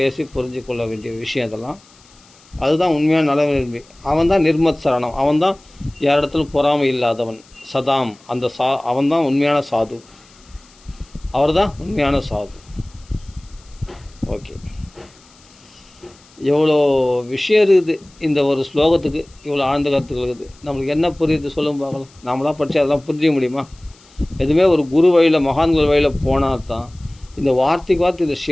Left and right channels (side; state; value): left; noise; hiss, 28 dB below the sound